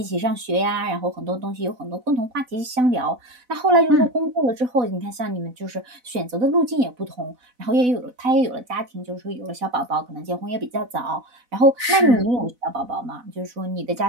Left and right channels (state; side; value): late; left; 4.0 ms